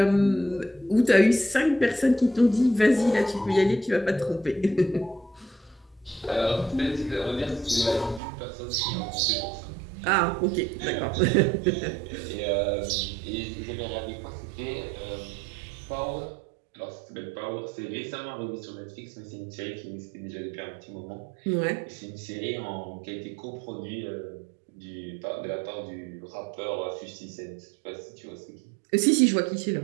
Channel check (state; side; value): drops out; left; at 8.2 s